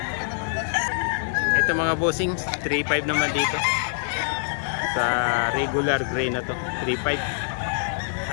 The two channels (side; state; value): right; silent; digital silence